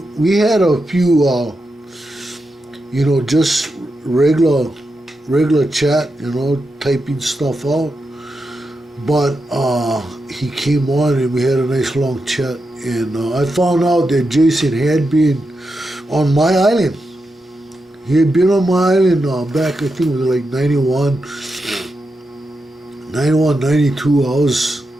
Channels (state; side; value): normal; both; correlation 0.87